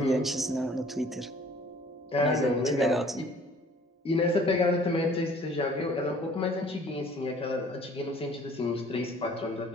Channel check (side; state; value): both; normal; correlation 0.54